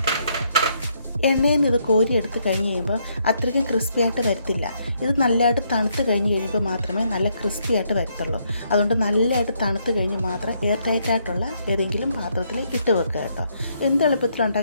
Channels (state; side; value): inverted; both; correlation -0.73